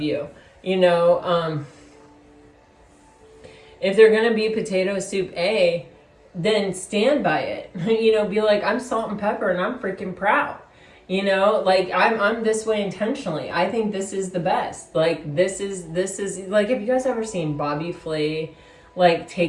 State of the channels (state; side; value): identical; both; correlation 1.00